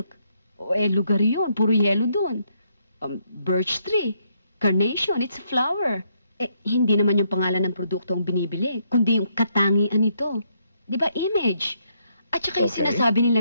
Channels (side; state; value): both; inverted; correlation -0.74